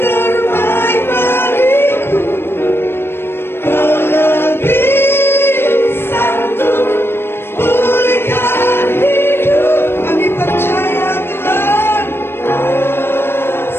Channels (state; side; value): late; right; 0.11 ms